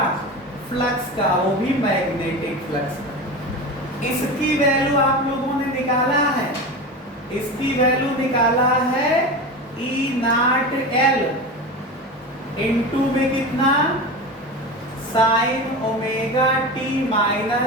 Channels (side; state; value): both; normal; correlation 0.27